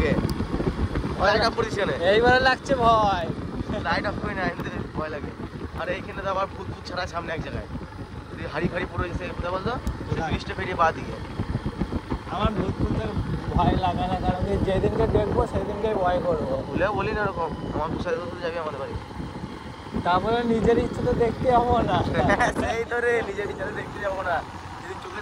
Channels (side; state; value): both; identical; correlation 1.00